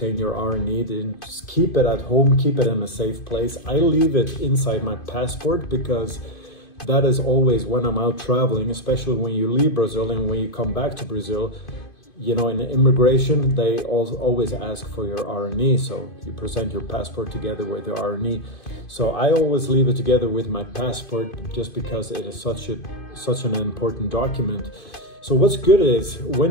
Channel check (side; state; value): right; late; 2.5 ms